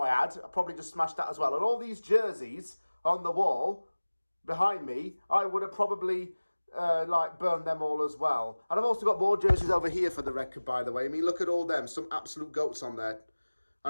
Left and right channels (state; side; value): inverted; both; correlation -1.00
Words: I had. I probably just smashed that as well. And all these jerseys on the wall behind me, I would have probably burn them all as well. And I've also got more jerseys over here for the record, by the way. I mean, look at all them. Some absolute goats on there.